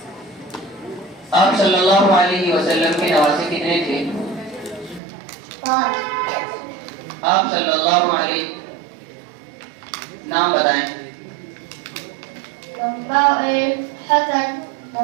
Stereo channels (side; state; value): left; drops out; at 5.0 s